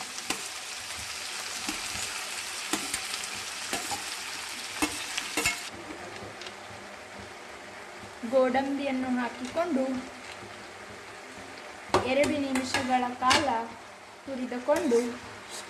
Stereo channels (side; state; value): both; identical; correlation 1.00